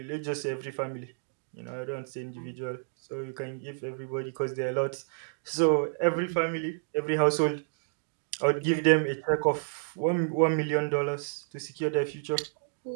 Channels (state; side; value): silent; left; digital silence